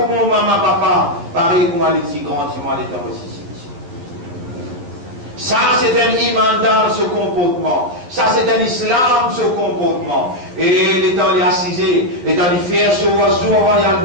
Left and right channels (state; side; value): late; left; 12 ms